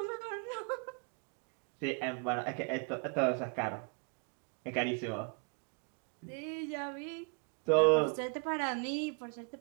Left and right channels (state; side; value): quieter; left; 37.6 dB